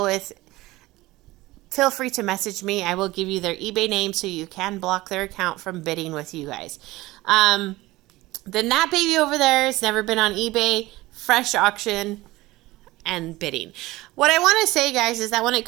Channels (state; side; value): quieter; left; 19.0 dB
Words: with, feel free to message me. I will give you their eBay name so you can block their account from bidding with you guys. Then that baby over there has never been on eBay, fresh auction, and bidding. What I want to say, guys, is that when it